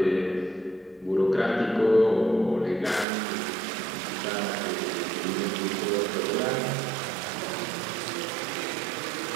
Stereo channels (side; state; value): left; drops out; at 3.1 s